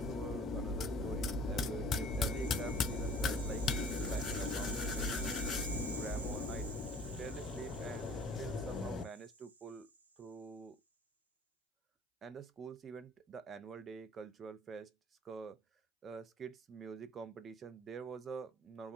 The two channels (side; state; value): both; normal; correlation 0.50